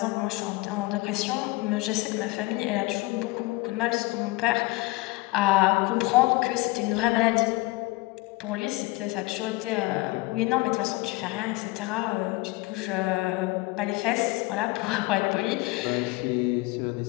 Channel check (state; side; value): quieter; right; 21.7 dB